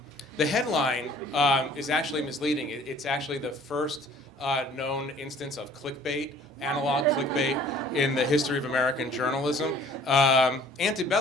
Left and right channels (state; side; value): normal; both; correlation 0.53